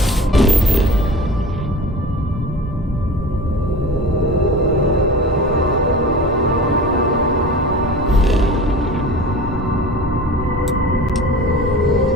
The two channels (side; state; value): both; normal; correlation 0.37